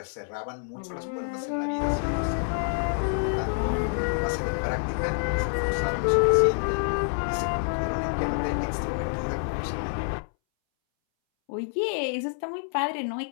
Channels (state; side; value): silent; right; 60 dB below the other